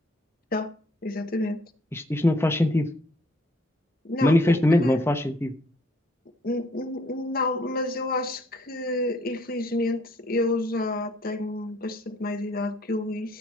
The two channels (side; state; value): both; normal; correlation 0.64